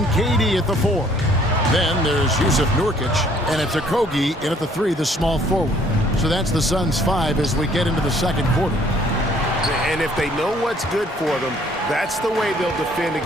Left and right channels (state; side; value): normal; both; correlation 0.60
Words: KD at the 4. Then there's Yusuf Nurkic, and it's Okogie in at the 3, the small forward. So that's the Suns' 5 as we get into the second quarter. And if they know what's good for them, that's the way they'll defend